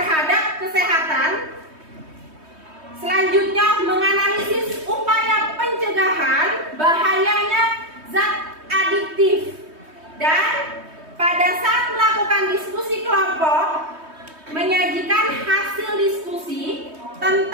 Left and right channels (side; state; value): left; late; 3.2 ms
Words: kesehatan. Selanjutnya menganalisis upaya pencegahan bahayanya zat adiktif. Dan pada saat melakukan diskusi kelompok, menyajikan hasil diskusi